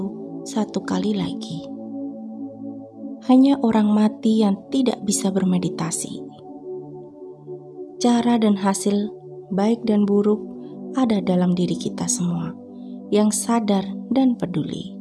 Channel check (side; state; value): both; identical; correlation 1.00